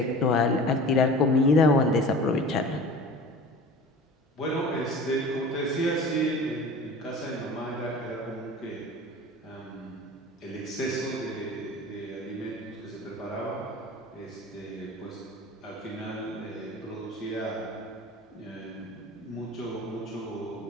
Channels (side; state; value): both; normal; correlation 0.39